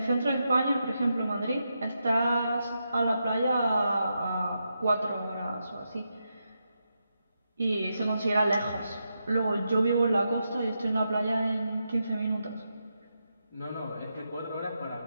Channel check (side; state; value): both; inverted; correlation -0.85